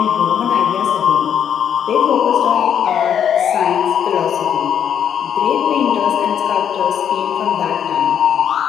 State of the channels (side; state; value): right; quieter; 8.8 dB